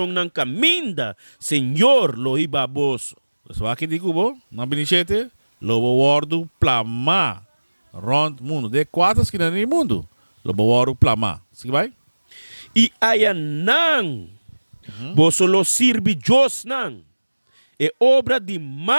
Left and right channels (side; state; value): both; inverted; correlation -1.00